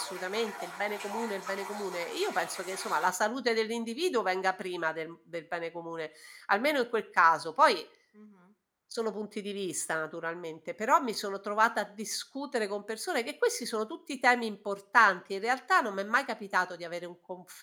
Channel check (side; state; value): both; identical; correlation 1.00